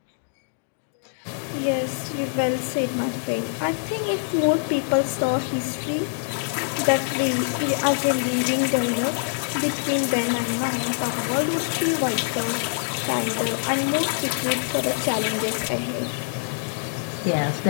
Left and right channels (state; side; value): silent; right; digital silence